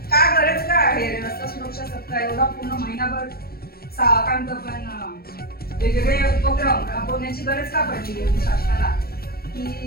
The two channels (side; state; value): right; late; 0.44 ms